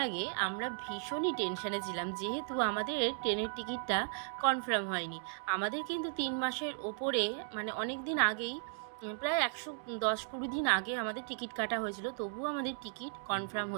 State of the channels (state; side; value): silent; left; digital silence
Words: আগে আমরা ভীষণই টেনশনে ছিলাম, যেহেতু আমাদের ট্রেনের টিকিটটা কনফার্ম হয়নি। আমাদের কিন্তু 3 মাসের ওপরে, মানে অনেক দিন আগেই, প্রায় 110-20 দিন আগে আমাদের টিকিট কাটা হয়েছিল, তবুও আমাদের টিকিট কনফার্ম